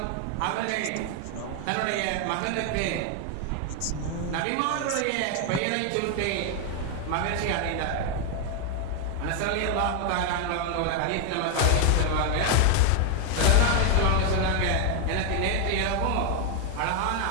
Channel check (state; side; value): different; both; correlation 0.00